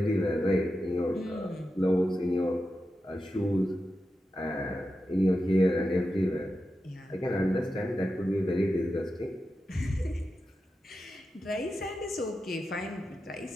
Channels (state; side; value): normal; both; correlation 0.90